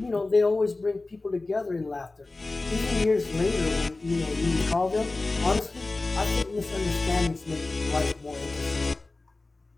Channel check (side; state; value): right; quieter; 3.3 dB